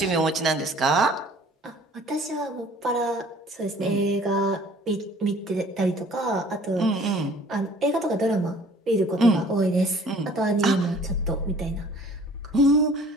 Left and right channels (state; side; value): normal; both; correlation 0.52